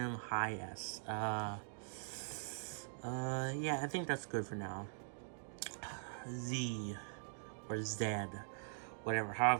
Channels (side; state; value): left; silent; digital silence